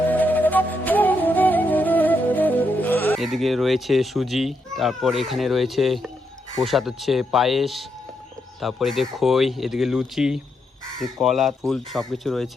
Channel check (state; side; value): normal; both; correlation 0.80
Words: এদিকে রয়েছে সুজি, তারপর এখানে রয়েছে প্রসাদ হচ্ছে পায়েস, তারপর এদিকে খই, এদিকে লুচি, কলা, ফুল সব কিছু